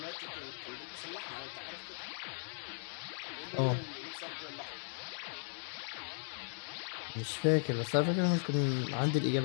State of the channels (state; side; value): silent; right; digital silence